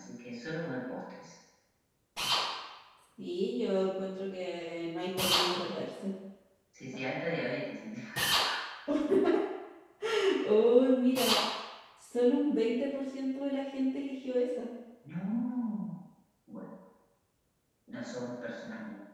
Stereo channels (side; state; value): both; identical; correlation 1.00